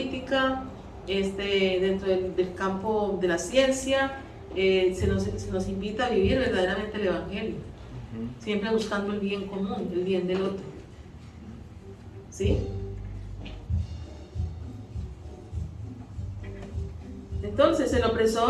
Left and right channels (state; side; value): identical; both; correlation 1.00